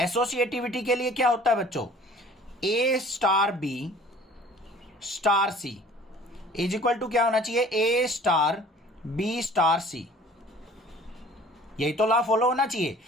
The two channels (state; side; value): normal; both; correlation 0.50